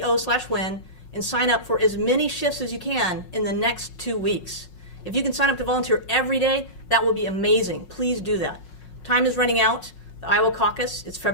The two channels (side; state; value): right; late; 5.5 ms